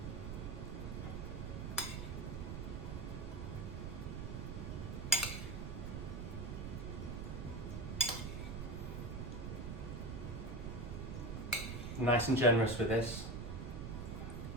Nice and generous with this.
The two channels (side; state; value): right; noise; rumble, 4 dB below the sound